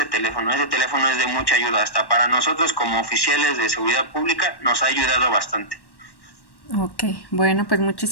teléfono. Ese teléfono es de mucha ayuda, hasta para nosotros como oficiales de seguridad pública nos ha ayudado bastante. Ok, bueno, pues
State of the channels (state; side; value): late; right; 1.1 ms